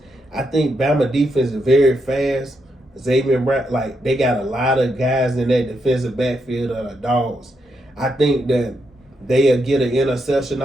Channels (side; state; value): both; normal; correlation 0.81